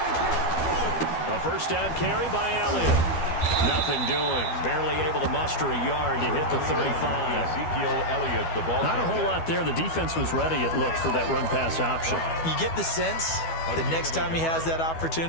A 1st down carry by Elliott. Nothing doing. Barely able to muster a yard to hit the 35. Ezekiel Elliott, the ball. Not a whole lot there. The defense was ready, it looked, for that run-pass option. You get the sense that next time he has that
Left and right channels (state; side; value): late; right; 12 ms